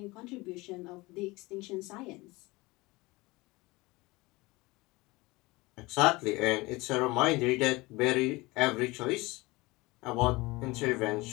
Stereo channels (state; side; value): quieter; right; 22.4 dB